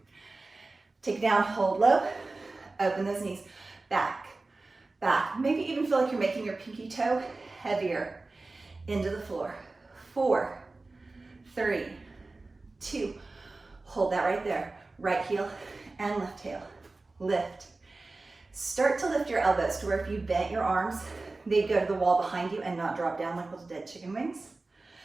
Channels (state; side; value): quieter; left; 3.4 dB